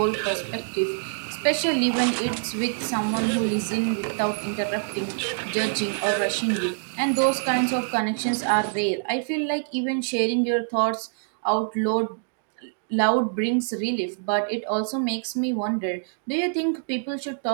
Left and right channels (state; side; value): silent; left; digital silence